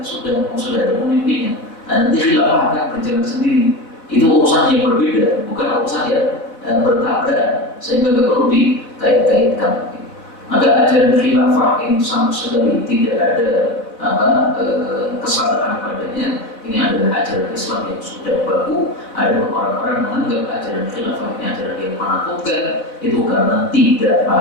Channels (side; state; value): right; late; 4.2 ms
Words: sudah ada pemimpinnya. Nanti khilafah akan berjalan sendiri. Itu urusan yang berbeda, bukan urusan yang bertabrakan, sehingga nggak perlu dikait-kaitkan. Maka ajaran khilafah ini sama sekali tidak ada kesalahan padanya. Ini adalah ajaran Islam yang sudah baku. Ada orang-orang menganggap ajaran khilafah ini ajaran yang menakutkan, itu karena tidak